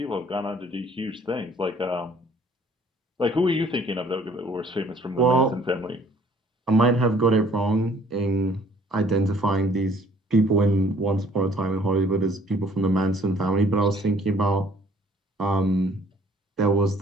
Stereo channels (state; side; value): normal; both; correlation 0.58